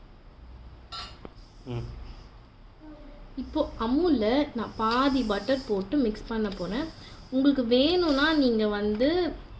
இப்போது அமுலில் நான் பாதி பட்டர் போட்டு மிக்ஸ் பண்ண போகிறேன். உங்களுக்கு வேணும்னா நீங்கள் வந்து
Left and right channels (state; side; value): identical; both; correlation 1.00